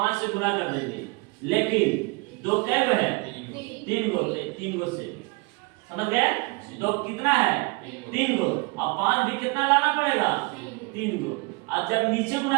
से गुणा कर देंगे। लेकिन 2 कै गो है? 3 गो। 3 गो से समझ गए? 2 कितना है? 3 गो। अब 5 भी कितना लाना पड़ेगा? 3 गो। अब जब नीचे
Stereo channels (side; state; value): left; quieter; 27.4 dB